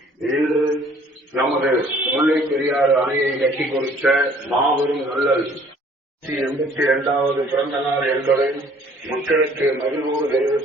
இன்று நமது முல்லை பெரியாறு அணையை கட்டி கொடுத்த மாபெரும் நல்லல் 82வது பிறந்த நாள் என்பதை மக்களுக்கு மகிழ்வோடு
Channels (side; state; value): both; normal; correlation 0.56